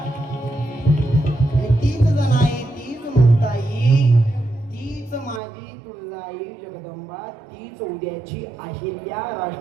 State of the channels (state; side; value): drops out; left; at 5.4 s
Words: तीच जण आहे, तीच मुक्ताई, तीच माझी तुळजाई जगदंबा, तीच उद्याची अहिल्या